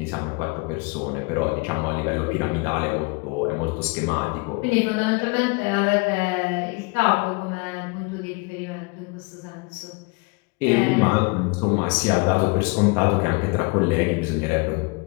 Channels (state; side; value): quieter; right; 28.7 dB